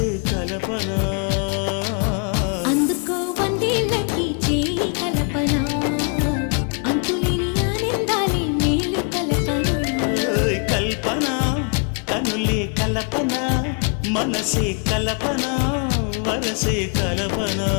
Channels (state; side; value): quieter; right; 38.1 dB